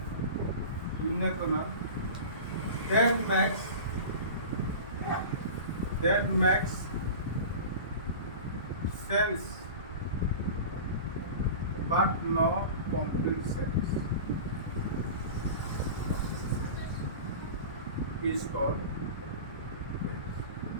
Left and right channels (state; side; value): inverted; both; correlation -0.34